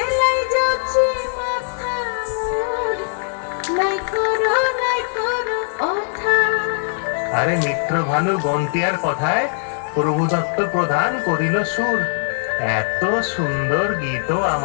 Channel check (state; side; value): silent; right; digital silence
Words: আরে মিত্র ভানু বন্টিয়ার কথায় প্রভু দত্ত প্রদান করিল সুর। এত সুন্দর গীত